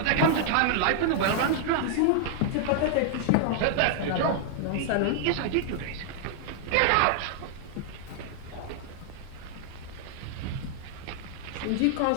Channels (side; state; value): both; different; correlation 0.00